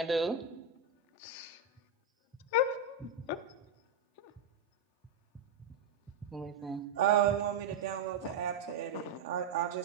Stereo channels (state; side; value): quieter; left; 4.1 dB